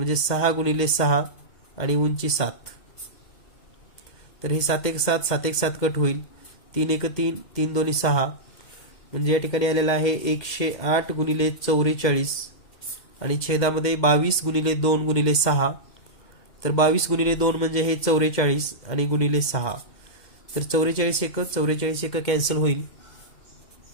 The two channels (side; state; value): right; late; 2.1 ms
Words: 6 गुणिले 6 आणि उंची 7. तर हे 7 1 7 7 1 7 कट होईल, 3 1 3 3 2 6, म्हणजे या ठिकाणी आलेला आहे 108 गुणिले 44 आणि छेदामध्ये 22 गुणिले 2 गुणिले 6. तर 22 गुणिले 2 म्हणजे हे 44 आणि गुणिले 6, तर 44 1 कॅन्सल होईल.